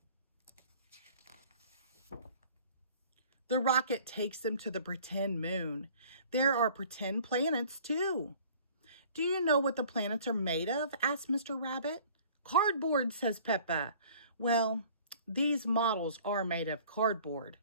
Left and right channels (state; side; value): inverted; both; correlation -0.51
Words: The rocket takes them to the pretend moon. There are pretend planets, too. Do you know what the planets are made of? Asks Mr. Rabbit. Cardboard, says Peppa. Well, these models are made of cardboard,